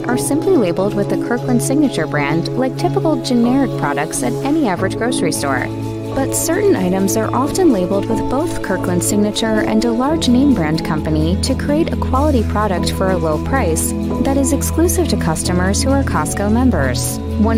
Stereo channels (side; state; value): both; identical; correlation 1.00